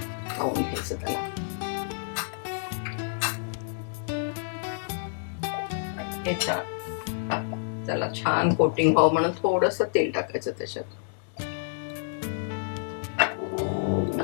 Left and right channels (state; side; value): silent; right; digital silence